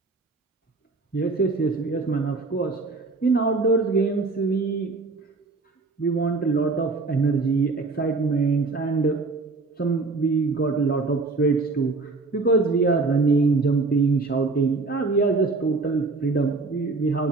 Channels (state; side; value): quieter; left; 3.8 dB